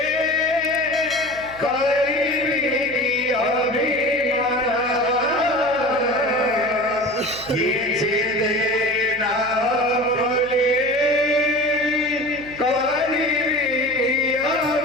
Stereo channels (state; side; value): noise; right; hum, 19 dB below the sound